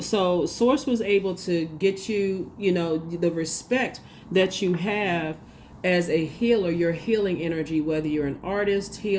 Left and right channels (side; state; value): both; identical; correlation 1.00